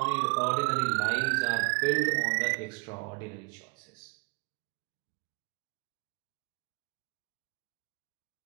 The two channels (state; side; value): quieter; left; 32.0 dB